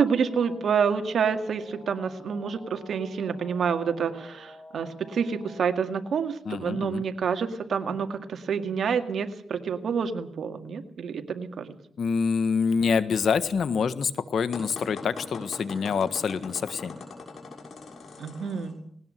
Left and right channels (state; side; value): normal; both; correlation 0.76